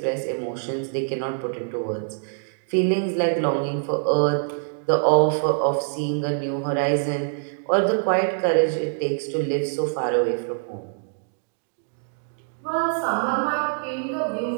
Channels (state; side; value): silent; left; digital silence